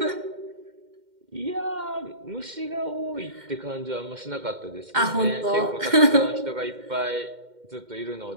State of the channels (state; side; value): late; left; 2.1 ms